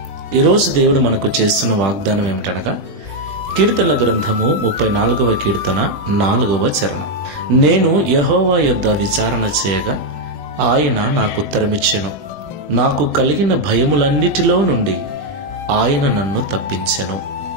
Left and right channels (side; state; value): left; late; 20 ms